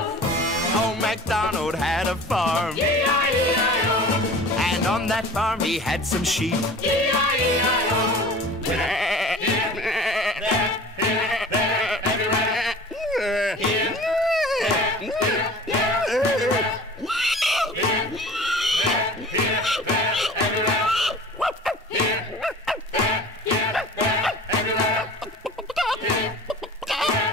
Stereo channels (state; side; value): normal; both; correlation 0.42